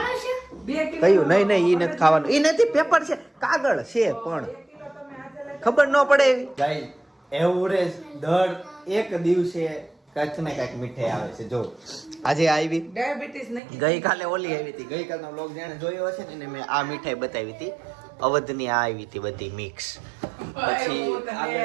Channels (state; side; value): drops out; left; at 13.6 s